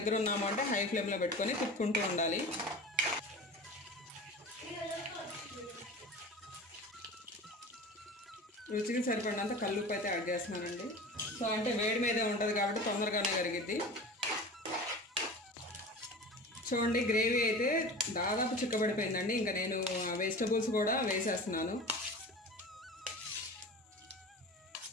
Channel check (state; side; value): normal; both; correlation 0.35